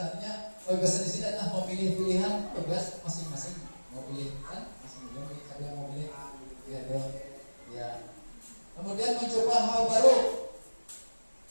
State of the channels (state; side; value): inverted; both; correlation -1.00